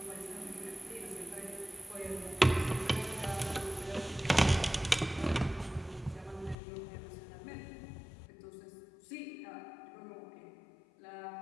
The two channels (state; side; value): drops out; right; at 6.6 s